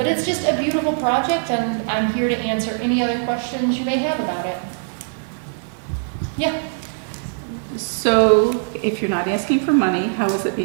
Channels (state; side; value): silent; left; digital silence